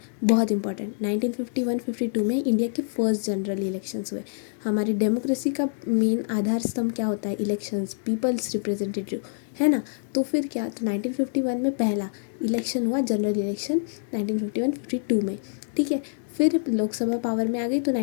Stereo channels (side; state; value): right; silent; digital silence